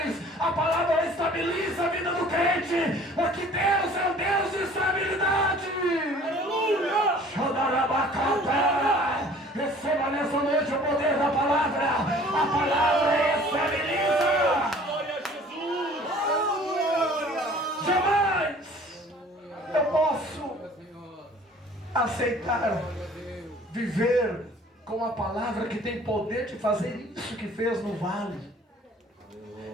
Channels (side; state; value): both; normal; correlation 0.51